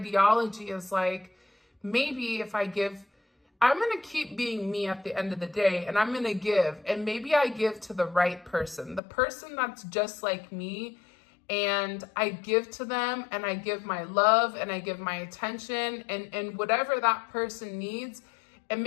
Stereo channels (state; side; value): drops out; right; at 9.0 s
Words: is like, maybe if I give, I'm going to keep being me at the end of the day, and I'm going to give, and maybe I give to the right person, the person that's just like me, and I give to them, and I give my love, and I give my attention, and whatever that person needs, and